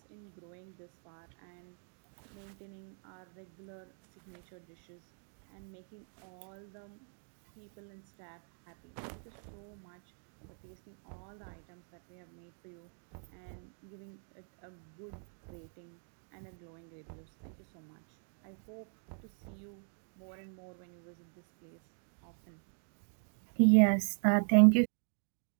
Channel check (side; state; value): left; silent; 51 dB below the other